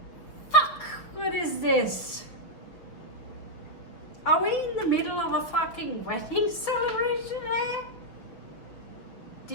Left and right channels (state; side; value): late; right; 5.9 ms